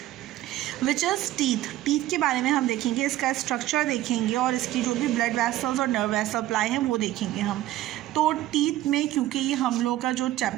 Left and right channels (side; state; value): left; quieter; 14.6 dB